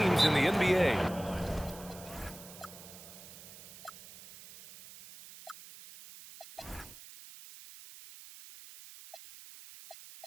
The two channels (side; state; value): right; noise; hiss, 17 dB below the sound